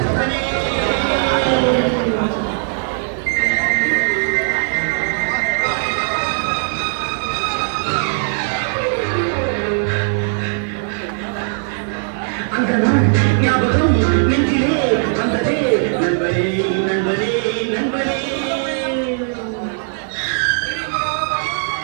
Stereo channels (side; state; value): left; silent; digital silence